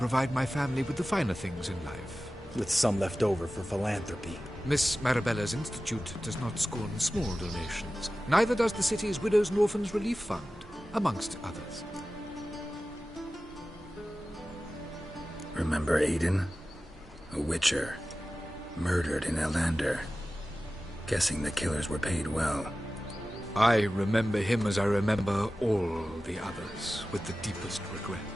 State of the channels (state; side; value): normal; both; correlation 0.95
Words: my family with the finer things in life. With some left over for philanthropy. Miss Marabella's institute does not scorn small donations. Neither does the city's Widows and Orphans Relief Fund, amongst others. Remember Aiden? A witcher. Murdered in Elander. Guessing the killers were paid well. I remember him as I remember all the others, with the deepest regret.